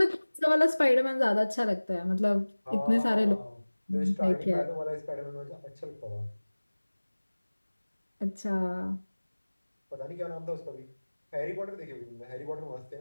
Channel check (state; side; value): inverted; both; correlation -1.00